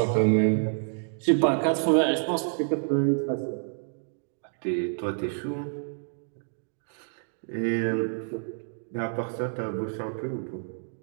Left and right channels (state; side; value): silent; left; digital silence